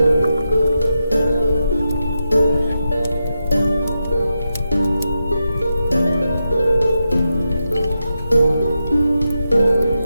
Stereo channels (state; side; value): inverted; both; correlation -0.87